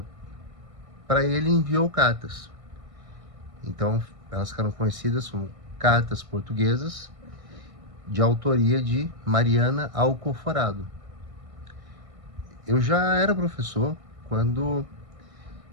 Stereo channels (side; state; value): left; late; 1.6 ms